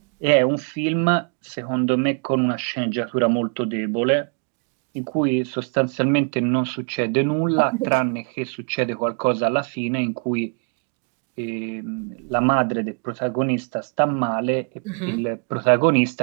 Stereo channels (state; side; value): quieter; left; 38.5 dB